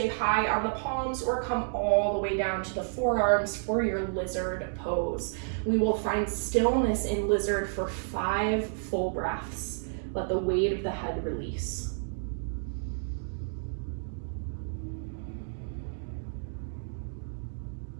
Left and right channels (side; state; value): left; silent; digital silence